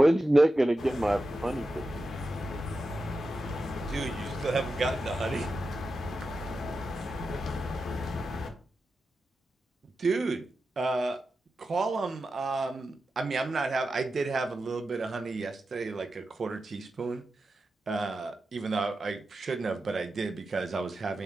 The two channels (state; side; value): normal; both; correlation 0.91